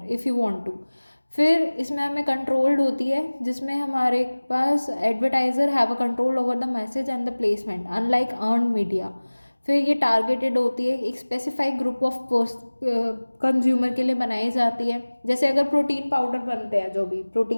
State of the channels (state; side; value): inverted; both; correlation -1.00